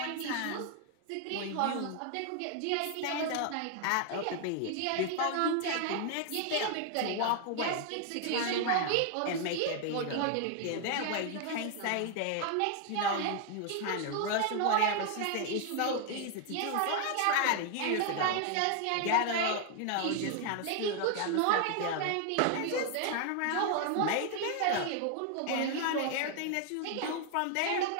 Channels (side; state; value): both; different; correlation 0.00